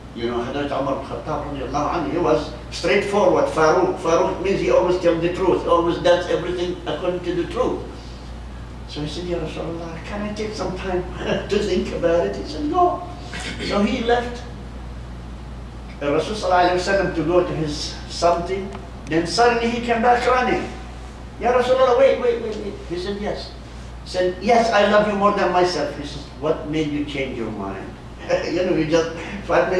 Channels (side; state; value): both; identical; correlation 1.00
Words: You know, Hazrat Umar ibn Khattab radiallahu anhu, he was straightforward, Farouk. Farouk means he always tells the truth, always does everything according to the truth. So he said, Ya Rasulullah, can I take some time to think about it? He said, no. So he left Rasul sallallahu alaihi wasallam to go to his something. Then suddenly he came back running. Ya Rasulullah, wait. He said, yes. He said, yes, I love you more than myself. He said, what made you change your mind? You know, you just 5